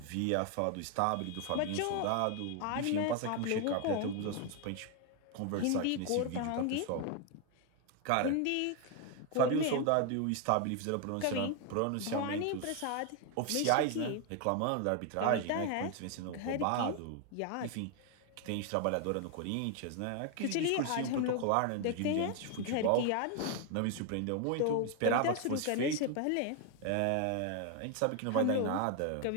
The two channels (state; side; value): different; both; correlation 0.01